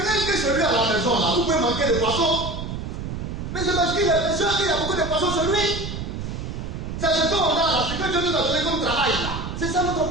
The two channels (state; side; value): noise; right; rumble, 6 dB below the sound